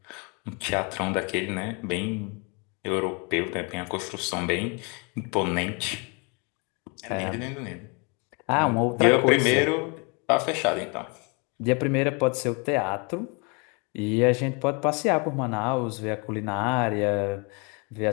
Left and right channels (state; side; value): quieter; right; 32.5 dB